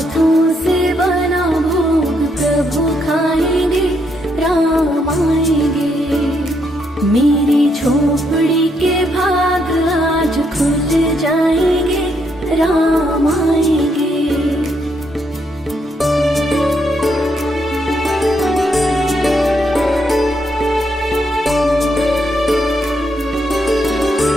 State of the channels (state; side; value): normal; both; correlation 0.76